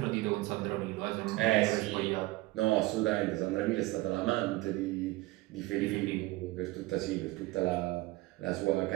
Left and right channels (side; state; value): left; quieter; 19.7 dB